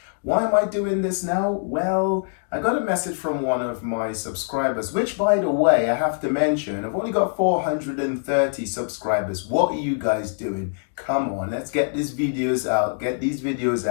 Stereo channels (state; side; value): silent; right; digital silence